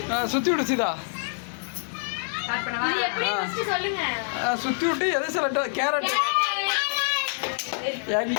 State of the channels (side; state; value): right; silent; digital silence